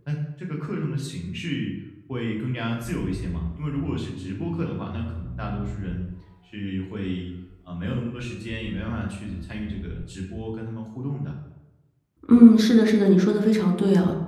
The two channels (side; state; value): both; identical; correlation 1.00